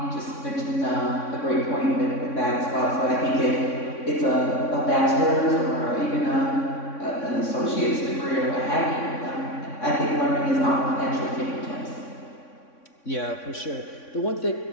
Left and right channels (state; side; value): late; right; 3.6 ms